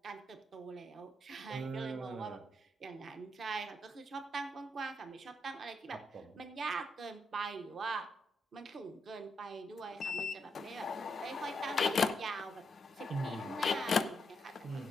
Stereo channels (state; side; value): normal; both; correlation 0.80